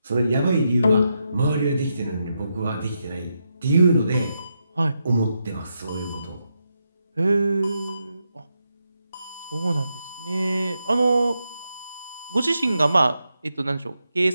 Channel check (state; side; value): inverted; both; correlation -0.84